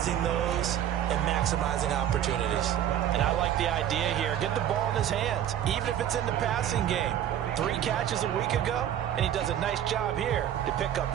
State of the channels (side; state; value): left; quieter; 10.7 dB